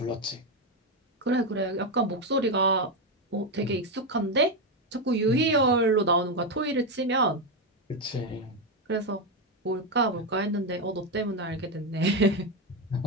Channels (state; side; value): normal; both; correlation 0.08